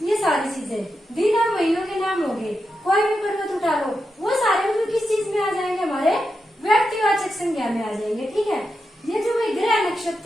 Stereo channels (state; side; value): normal; both; correlation 0.87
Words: ये सारी चीजें। दिन और महीनों के नाम हो गए, कोई भी पर्वत उठा लो, वो सारे मतलब किस चीज में आ जाएंगे? हमारे व्यक्तिवाचक संज्ञा में आ जाएंगे। ठीक है, ये जो भाई ग्रह